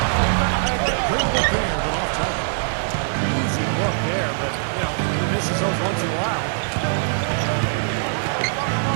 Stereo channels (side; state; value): left; silent; digital silence